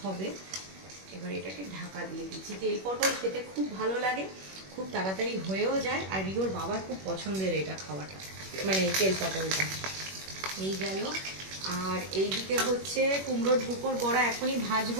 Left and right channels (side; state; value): left; late; 21 ms